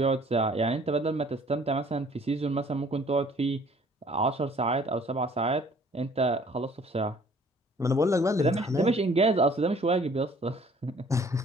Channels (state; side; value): normal; both; correlation 0.56